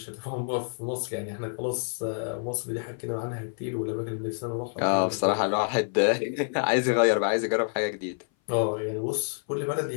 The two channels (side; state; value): right; silent; 57 dB below the other